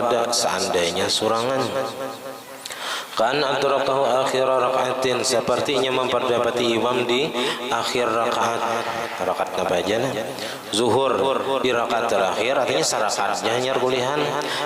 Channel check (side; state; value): both; identical; correlation 1.00